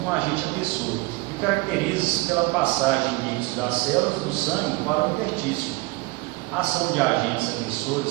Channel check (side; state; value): left; quieter; 23.2 dB